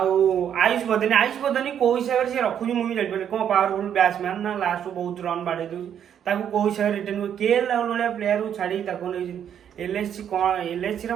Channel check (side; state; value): left; quieter; 9.1 dB